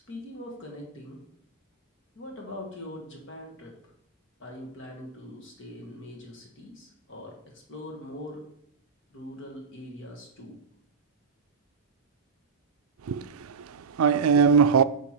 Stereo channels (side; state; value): left; quieter; 5.5 dB